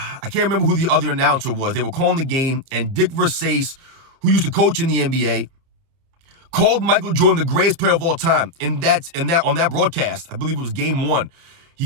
can't remember who the other announcer was. They were calling the game, and Dick Versace, who used to coach in the NBA, called Michael Jordan the greatest player of all time. On that broadcast, I believe it was game 1.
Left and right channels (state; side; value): late; left; 30 ms